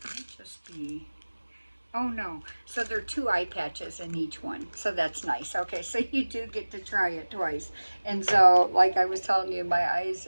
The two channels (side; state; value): both; inverted; correlation -1.00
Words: might just be... Oh no, so there are 2 eye patches in each one, so that's nice. Okay, so you do get to try it twice. And so, like I was telling you, my eyes,